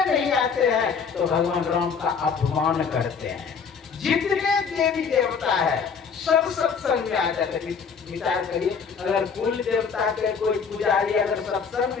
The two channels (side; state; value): right; quieter; 6.0 dB